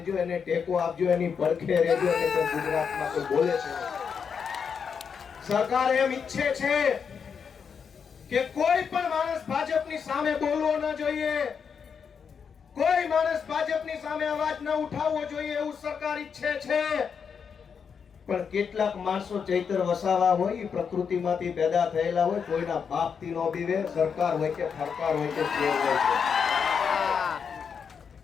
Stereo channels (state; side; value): quieter; right; 6.5 dB